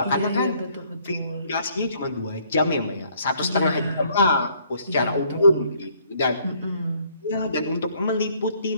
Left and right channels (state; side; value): inverted; both; correlation -0.64